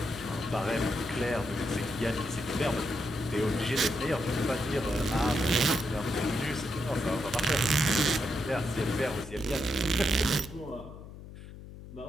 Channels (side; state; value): left; noise; hum, 14 dB below the sound